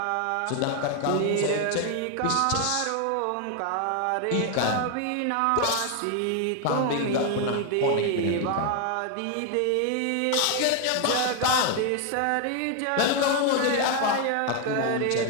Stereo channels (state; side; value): different; both; correlation 0.01